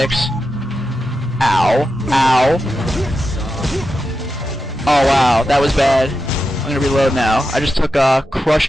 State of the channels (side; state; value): both; normal; correlation 0.89